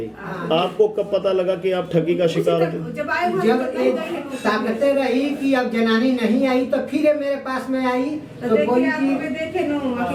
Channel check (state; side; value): identical; both; correlation 1.00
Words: आपको कब पता लगा कि आप ठगी का शिकार थे? जब ताकते रही कि अब जनानी नहीं आई तो फिर मेरे पास में आई तो बोली